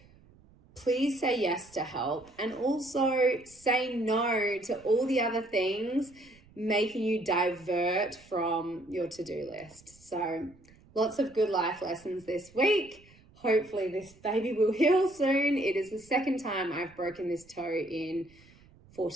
please say yes to help, and also say no to all the other things making you divert from your to-do list. So lots of good life lessons this week. Hopefully this baby will heal soon. It is the second time I've broken this toe in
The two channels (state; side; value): noise; right; rumble, 26 dB below the sound